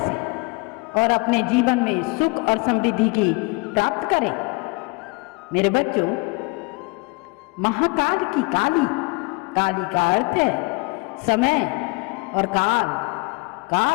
और अपने जीवन में सुख और समृद्धि की प्राप्त करें। मेरे बच्चों, महाकाल की काली, काली का अर्थ है समय और काल।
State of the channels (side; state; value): right; quieter; 27.8 dB